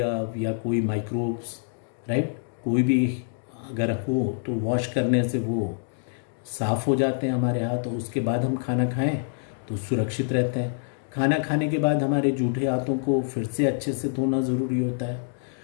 या कोई माइक्रोब्स, राइट, कोई भी अगर हो तो वॉश करने से वो साफ़ हो जाते हैं हमारे हाथ, और उसके बाद हम खाना खाएं तो सुरक्षित रहते हैं। खाना खाने के बाद हमारे जूठे हाथों को फिर से अच्छे से धोना ज़रूरी होता है,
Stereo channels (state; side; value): silent; right; digital silence